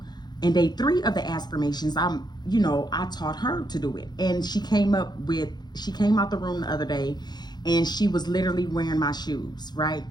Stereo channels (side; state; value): right; late; 0.20 ms